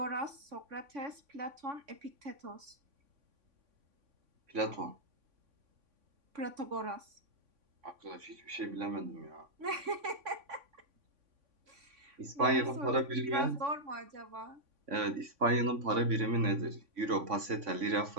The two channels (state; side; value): late; left; 3.5 ms